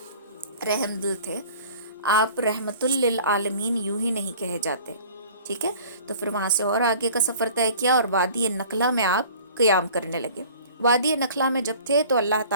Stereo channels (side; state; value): both; inverted; correlation -0.47